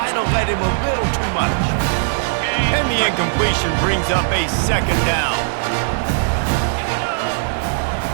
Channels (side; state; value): left; silent; 67 dB below the other